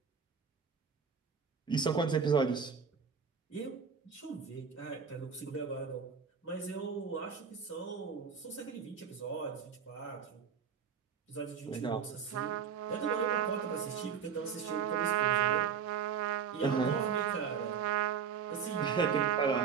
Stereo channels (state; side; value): quieter; left; 6.7 dB